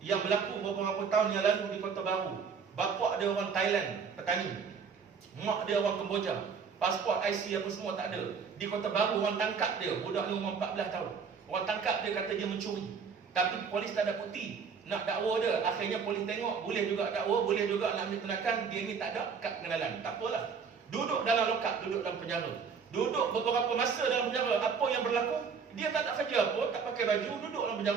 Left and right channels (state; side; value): quieter; left; 6.0 dB